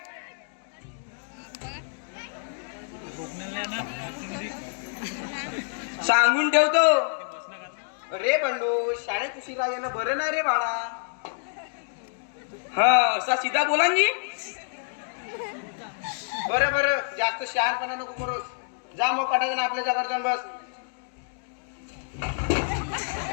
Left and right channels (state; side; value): silent; right; digital silence